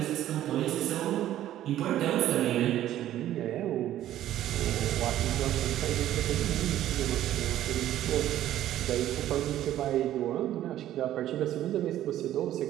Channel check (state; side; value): quieter; left; 12.8 dB